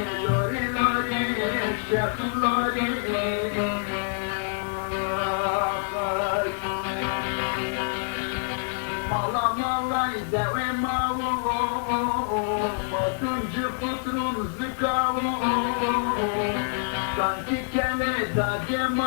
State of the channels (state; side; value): silent; right; digital silence